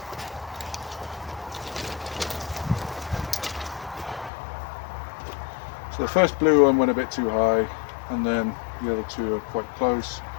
So the first blue one went a bit too high, and then the other two are quite close.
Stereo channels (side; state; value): right; drops out; at 4.3 s